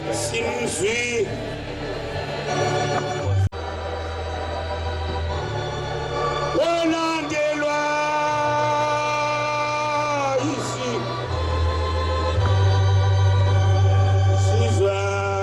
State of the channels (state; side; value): identical; both; correlation 1.00